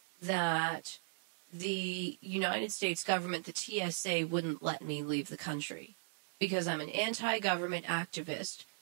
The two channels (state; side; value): silent; left; digital silence